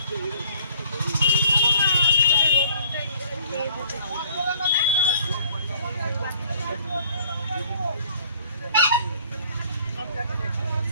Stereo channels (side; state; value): both; inverted; correlation -0.55